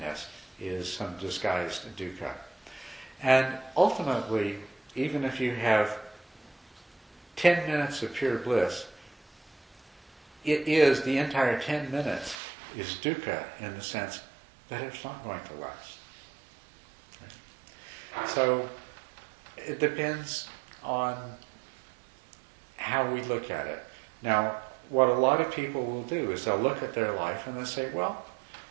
is some disguised dukkha. And ultimately, even if you have 10 minutes of pure bliss, the entire 10 minutes is dukkha in the sense that it's not going to last. Right? So it depends on how we look at it. Now, what a lot of people will do is they'll look at their life and they'll say, well,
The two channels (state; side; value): drops out; left; at 12.4 s